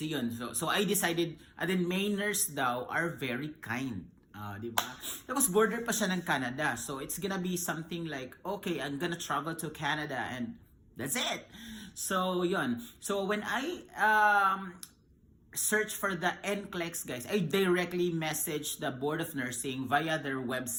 yun. So I decided, and then Mainers daw are very kind. Di ba? Tapos border pa siya ng Canada. So, it's gonna be something like, okay, I'm gonna travel to Canada and that's it. So, yun. So, when I search for the NCLEX, guys, I directly message the Board of Nursing via their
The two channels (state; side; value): identical; both; correlation 1.00